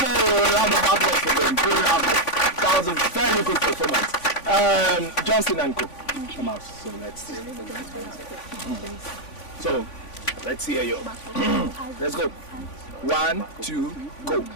That was a very good performance. Johnson and Co. Come out. So let's see. So let's see you. Let's go. 1, 2, go.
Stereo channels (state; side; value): late; right; 3.5 ms